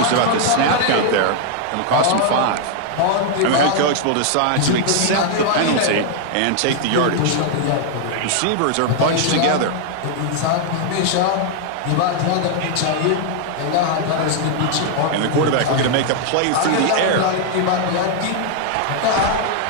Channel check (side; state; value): both; different; correlation 0.00